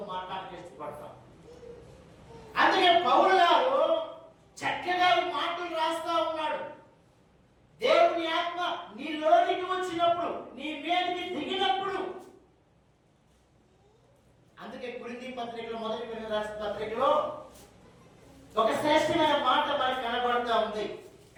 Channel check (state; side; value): identical; both; correlation 1.00